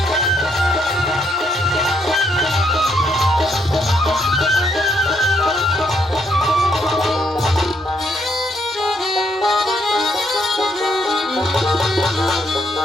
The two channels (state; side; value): normal; both; correlation 0.73